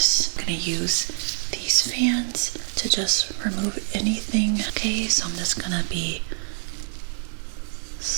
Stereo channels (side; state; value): left; silent; digital silence